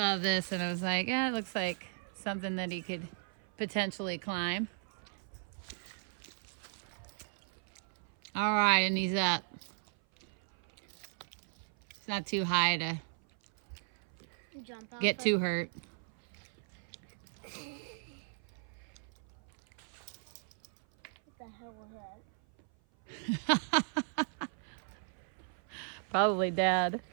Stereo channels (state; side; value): silent; left; 54 dB below the other